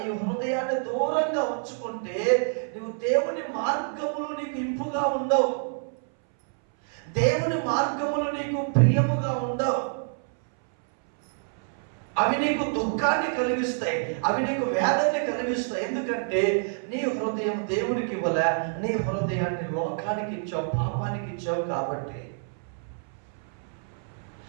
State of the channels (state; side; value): silent; left; 60 dB below the other